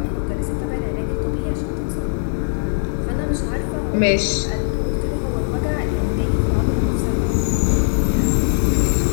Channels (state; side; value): silent; right; digital silence